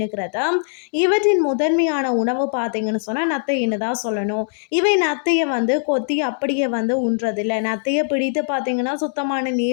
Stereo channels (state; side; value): silent; right; digital silence